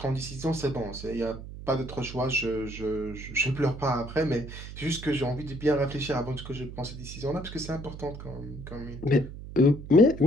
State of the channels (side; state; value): right; noise; hum, 11 dB below the sound